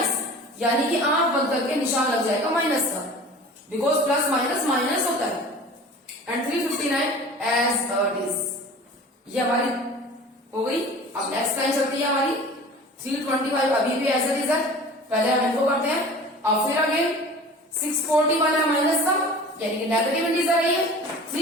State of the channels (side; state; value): both; normal; correlation 0.41